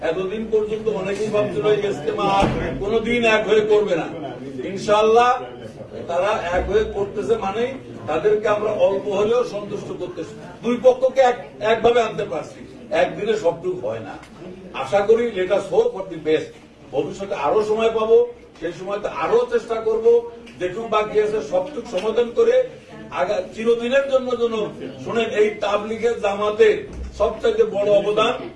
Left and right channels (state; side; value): identical; both; correlation 1.00